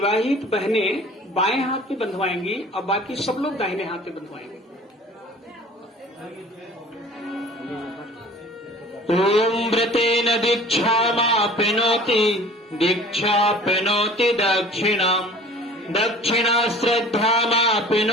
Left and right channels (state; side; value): normal; both; correlation 0.46